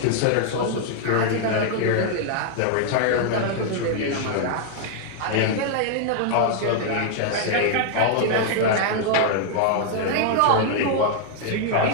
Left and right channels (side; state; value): both; different; correlation 0.00